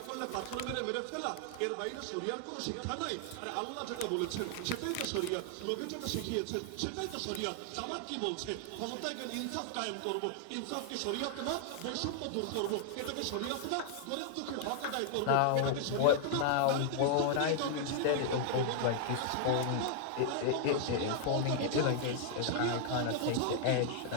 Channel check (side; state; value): both; different; correlation 0.00